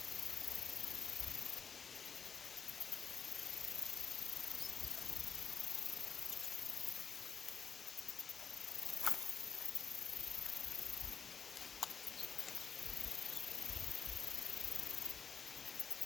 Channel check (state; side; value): quieter; right; 6.3 dB